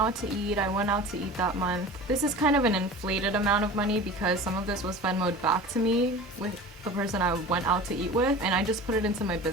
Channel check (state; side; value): normal; both; correlation 0.37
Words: to eat. I went out to eat that month. This is kind of an inflated amount of money because some of this was Venmo'd back to me with the person I went out to eat with, and I just put it into my